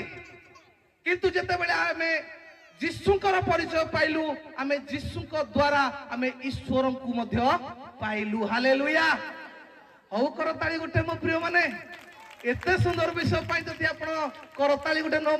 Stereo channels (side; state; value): both; identical; correlation 1.00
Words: କିନ୍ତୁ ଯେତେବେଳେ ଆମେ ଯୀଶୁଙ୍କର ପରିଚୟ ପାଇଲୁ, ଆମେ ଯୀଶୁଙ୍କ ଦ୍ୱାରା ଆମେ ଈଶ୍ୱରଙ୍କୁ ମଧ୍ୟ ପାଇଲୁ। ହାଲେଲୁୟା। ହଉ କରତାଳି ଗୋଟେ ମୋ ପ୍ରିୟ ମାନେ। ଏତେ ସୁନ୍ଦର ବିଷୟ ପାଇଁ ଯଦି ଆପଣ କରତାଳି ଗୋଟେ ନ